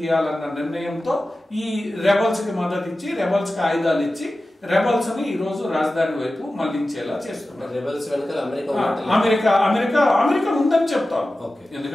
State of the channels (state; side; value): normal; both; correlation 0.95